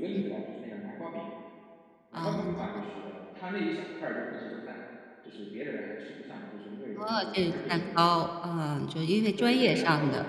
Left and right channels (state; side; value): identical; both; correlation 1.00